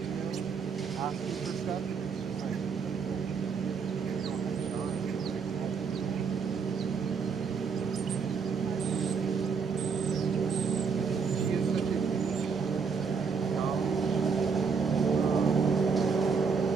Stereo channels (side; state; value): left; quieter; 5.7 dB